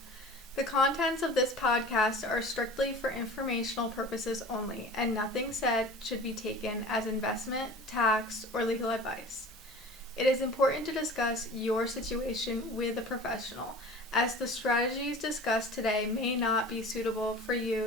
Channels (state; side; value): normal; both; correlation 0.40